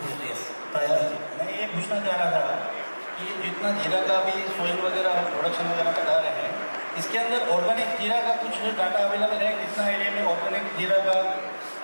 yes. मैं ये पूछना चाह रहा था कि जितना जीरा का भी सोइल वगैरह प्रोडक्शन वगैरह बता रहे हैं, इसके अंदर ऑर्गेनिक जीरा का कुछ डाटा अवेलेबल है? कितना एरिया में ऑर्गेनिक जीरा का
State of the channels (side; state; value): both; inverted; correlation -1.00